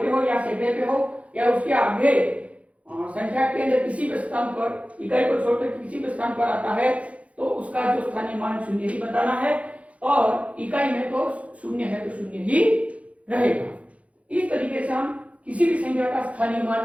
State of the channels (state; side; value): late; left; 0.065 ms